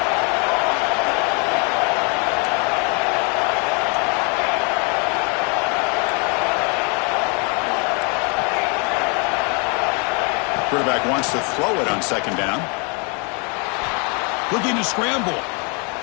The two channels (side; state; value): right; quieter; 33.7 dB